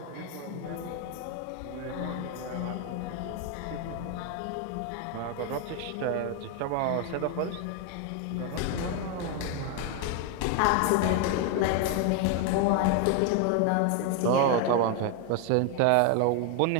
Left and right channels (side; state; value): both; different; correlation 0.01